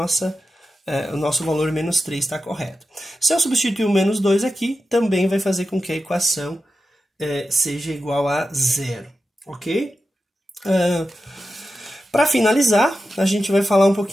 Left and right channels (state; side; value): normal; both; correlation 0.91